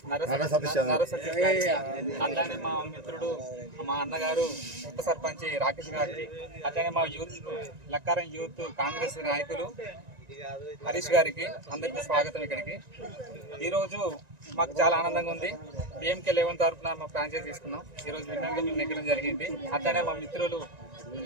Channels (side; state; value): left; late; 1.9 ms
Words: నర్ర సతీష్ అట్లానే మా మిత్రుడు మా అన్నగారు ఉప సర్పంచ్ రాకేష్ గారికి, అట్లానే మా యూత్ లక్కారం యూత్ కాంగ్రెస్ నాయకులు హరీష్ గారికి అందరికీ స్వాగతం. ఇక్కడికి ఈరోజు మాకు చాలా ఆనందంగా ఉంది. BMK11 తరఫున మా ఫ్రాంచైజ్ తీసుకున్నాం. ఈరోజు విన్నర్గా మేము నెగ్గడం జరిగింది. అట్లానే మా మిత్రులు